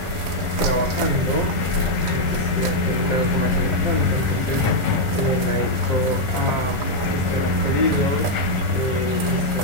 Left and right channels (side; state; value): left; late; 1.4 ms